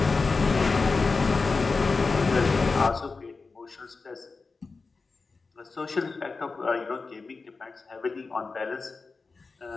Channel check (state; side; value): quieter; right; 4.2 dB